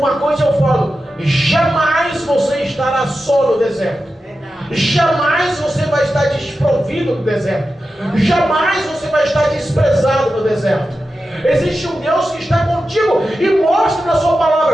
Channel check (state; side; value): normal; both; correlation 0.91